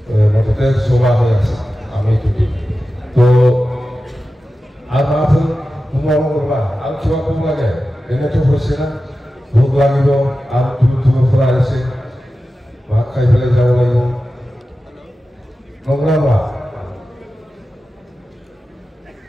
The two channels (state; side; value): normal; both; correlation 0.93